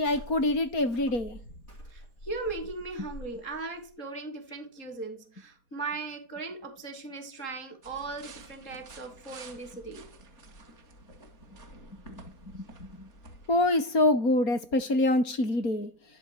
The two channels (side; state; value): right; late; 4.3 ms